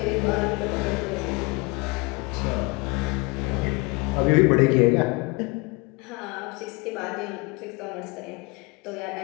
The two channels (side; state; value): right; quieter; 26.7 dB